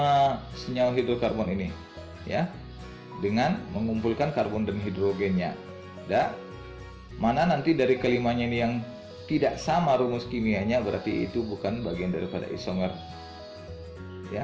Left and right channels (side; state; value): both; identical; correlation 1.00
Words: senyawa hidrokarbon ini ya, dengan mengumpulkan karbon dan hidrogennya. Dan mana nanti dari kelimanya ini yang tidak sama rumus kimianya, berarti itu bukan bagian daripada isomer